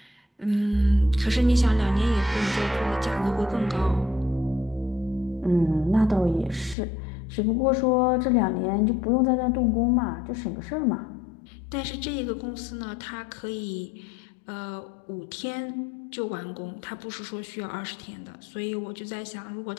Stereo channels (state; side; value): drops out; right; at 6.8 s